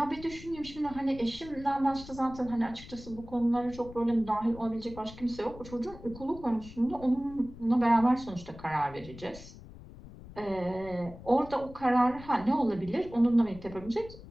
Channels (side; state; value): left; noise; rumble, 16 dB below the sound